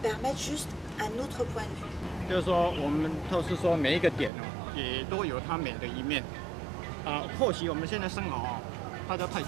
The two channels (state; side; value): drops out; left; at 4.3 s